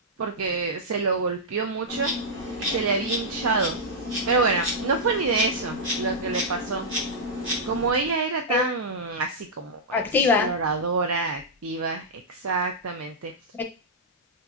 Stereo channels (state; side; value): normal; both; correlation -0.08